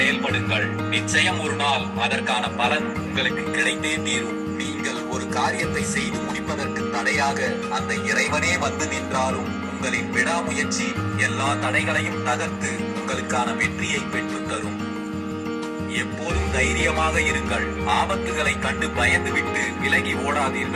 நிச்சயம் ஒரு நாள் அதற்கான பலன் உங்களுக்கு கிடைத்தே தீரும். நீங்கள் ஒரு காரியத்தை செய்து முடிப்பதற்கு தடையாக அந்த இறைவனே வந்து நின்றாலும் உங்களின் விடாமுயற்சி எல்லா தடைகளையும் தகர்த்து உங்களுக்கான வெற்றியை பெற்றுத் தரும். எப்போதும் தைரியமாக இருங்கள். ஆபத்துகளை கண்டு பயந்துவிட்டு விலகி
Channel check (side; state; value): both; identical; correlation 1.00